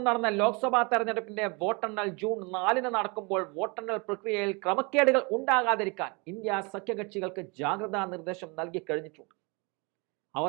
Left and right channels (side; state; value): left; quieter; 29.8 dB